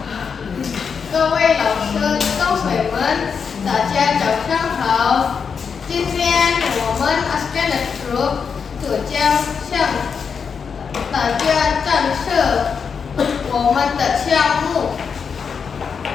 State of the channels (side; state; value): right; quieter; 6.2 dB